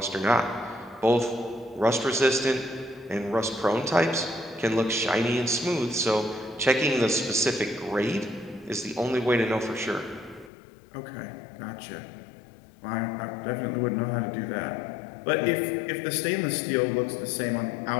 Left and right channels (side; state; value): right; drops out; at 10.5 s